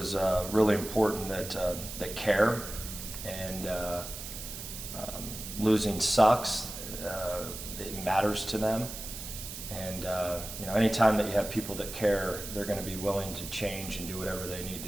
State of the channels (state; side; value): noise; right; hiss, 9 dB below the sound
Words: really important, that care, and losing sucks. It matters to them, and anytime that you have people that care, they're going to be willing to change and do whatever they need